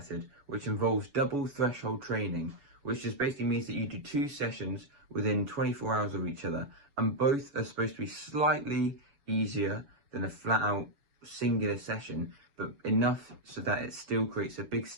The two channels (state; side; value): late; left; 7.1 ms